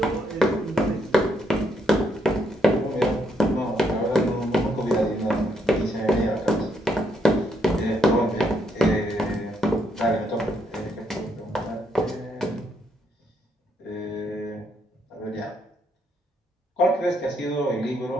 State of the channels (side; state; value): both; normal; correlation 0.74